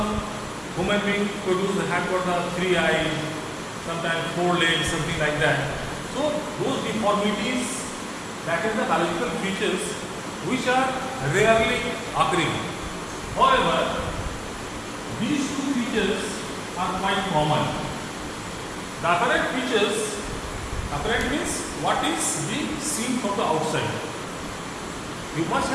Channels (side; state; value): both; identical; correlation 1.00